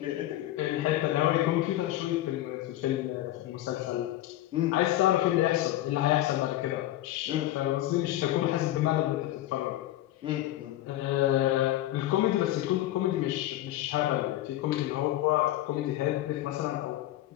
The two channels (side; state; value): right; quieter; 14.6 dB